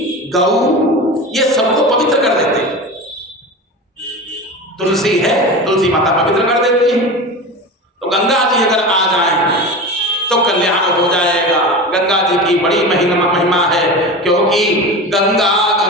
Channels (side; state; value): both; normal; correlation 0.29